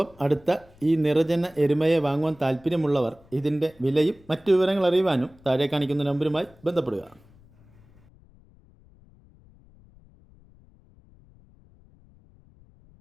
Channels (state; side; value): noise; left; rumble, 27 dB below the sound